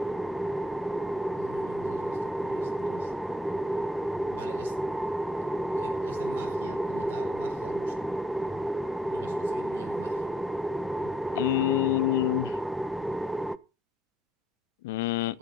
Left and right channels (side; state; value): both; normal; correlation 0.65